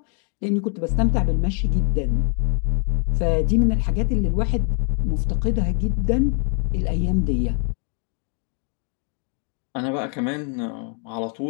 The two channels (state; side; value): quieter; right; 39.7 dB